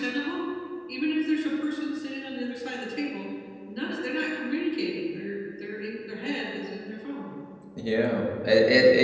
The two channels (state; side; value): identical; both; correlation 1.00